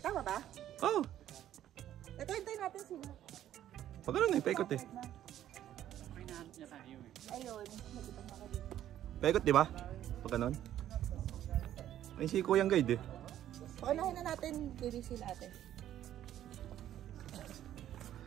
Tama ba? Oh. Ito, hintayin natin sila. Pag ganun eh, paikot eh. Ayun. Paikot di ba? Pag ganun. Ay si Kuyang guide eh. Paunahin na natin, baby sila ate.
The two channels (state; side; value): quieter; left; 11.8 dB